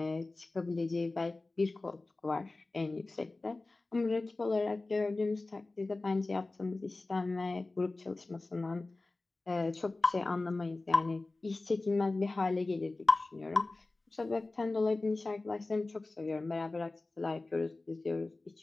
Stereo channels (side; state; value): right; quieter; 3.2 dB